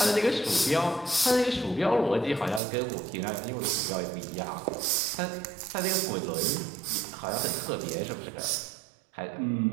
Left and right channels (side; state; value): left; drops out; at 2.6 s